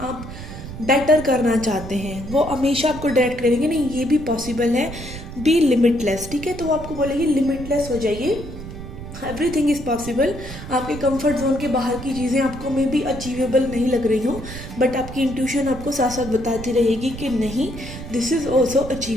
आप बेटर करना चाहते हैं वो हमेशा आपको डायरेक्ट करेंगे, नहीं ये भी पॉसिबल है, बी लिमिटलेस, ठीक है। तो वो आपको बोलेगी लिमिटलेस हो जाइए, एवरीथिंग इज़ पॉसिबल। आपके कंफर्ट जोन के बाहर की चीज़ें आपको में भी अचीवेबल नहीं लग रही हों बट आपकी इंट्यूशन आपको साथ साथ बताती रहेगी कि नहीं this is also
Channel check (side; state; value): right; noise; rumble, 11 dB below the sound